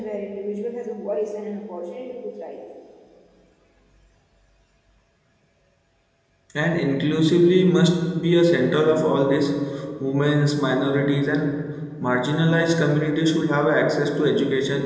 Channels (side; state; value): both; identical; correlation 1.00